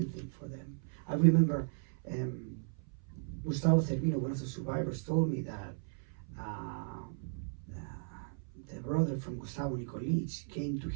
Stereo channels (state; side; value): silent; left; 54 dB below the other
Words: thing for them. I remember Gustavo Cervino, one of the survivors, told me that the brother from Gustavo Nikolic came to